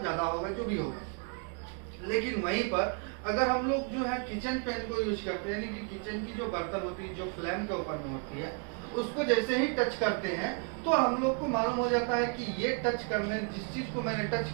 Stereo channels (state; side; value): quieter; left; 37.2 dB